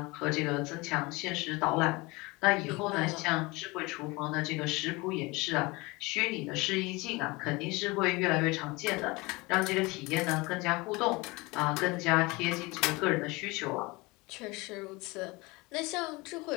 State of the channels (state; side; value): quieter; right; 24.1 dB